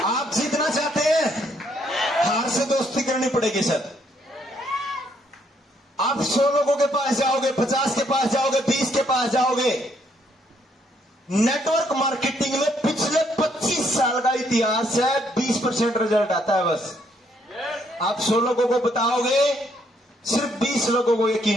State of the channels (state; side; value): normal; both; correlation 0.71